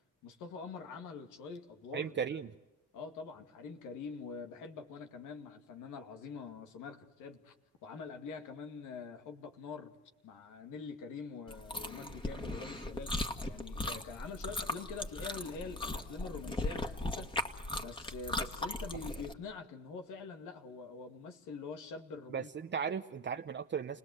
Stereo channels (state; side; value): normal; both; correlation 0.30